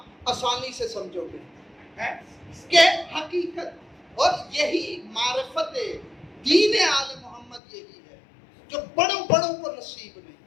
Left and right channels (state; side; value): drops out; right; at 7.6 s